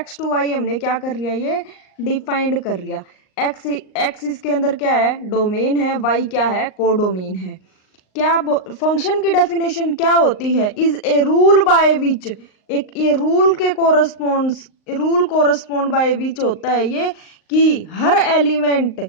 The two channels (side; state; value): right; late; 38 ms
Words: टू वाई हमने क्या कर लिया, ये डिफाइंड कर लिया। एक्स इसके अंदर क्या है, डोमेन है, वाई क्या है, कोडोमेन है। क्या फंक्शन की डेफिनेशन क्या होती है? Is a rule by which, एक ये रूल के कोरस्पोंड बाय विच होता है ये कि हर एलिमेंट